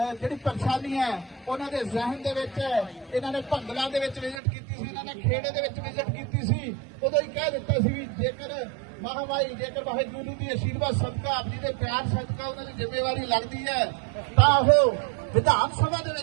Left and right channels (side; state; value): left; drops out; at 4.4 s